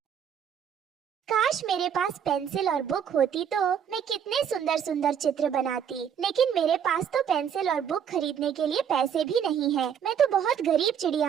काश मेरे पास पेंसिल और बुक होती तो मैं कितने सुंदर सुंदर चित्र बनाती। लेकिन मेरे पास तो पेंसिल और बुक खरीदने के लिए पैसे भी नहीं है। मैं तो बहुत गरीब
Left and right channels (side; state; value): left; quieter; 8.2 dB